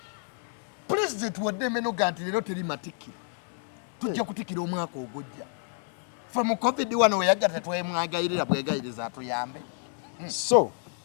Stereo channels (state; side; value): silent; right; 58 dB below the other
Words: president wadde emeno ga nti leero teri matikkira tujja kutikkira omwaka ogujja fe mu covid wano weyagga tetwemwagayirira bwegayiriza atuyambe so